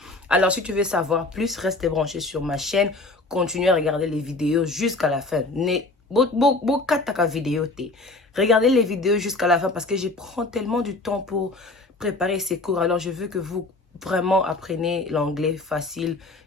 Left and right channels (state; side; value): quieter; right; 3.2 dB